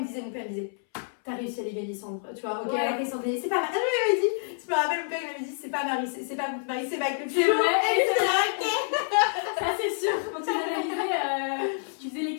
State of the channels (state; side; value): silent; right; 60 dB below the other